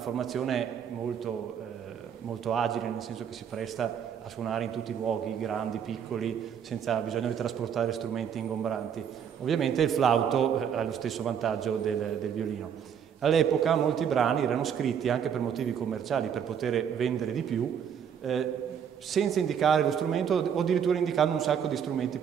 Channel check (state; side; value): quieter; left; 8.1 dB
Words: molto agile, nel senso che si presta a suonare in tutti i luoghi, grandi, piccoli, senza bisogno di trasportare strumenti ingombranti. Ovviamente il flauto ha lo stesso vantaggio del violino. All'epoca molti brani erano scritti anche per motivi commerciali, per poter vendere di più, senza indicare lo strumento o addirittura indicando un sacco di strumenti